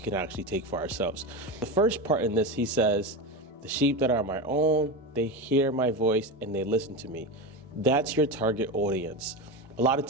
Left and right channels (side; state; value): both; normal; correlation 0.20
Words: actually take for ourselves. The first part in this, he says, "The sheep that are my own, they hear my voice and they listen to me." That's your target audience. A lot of